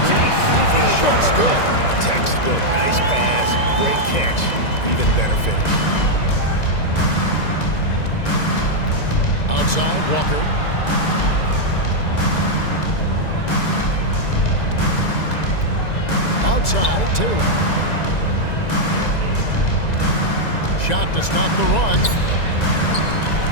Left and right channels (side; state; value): right; late; 1.9 ms